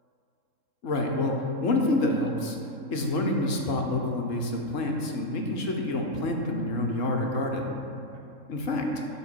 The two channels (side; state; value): right; late; 3.7 ms